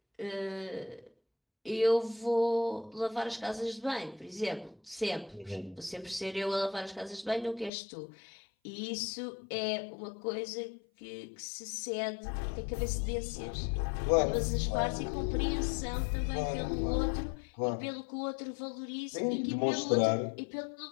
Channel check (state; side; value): drops out; right; at 7.7 s